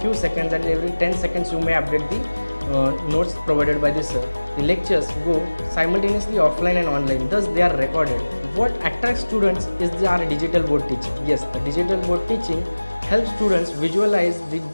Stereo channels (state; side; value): inverted; both; correlation -1.00